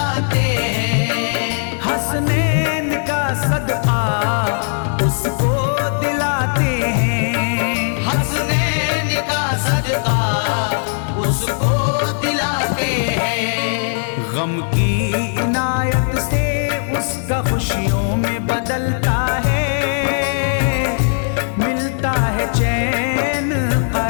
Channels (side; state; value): right; silent; 67 dB below the other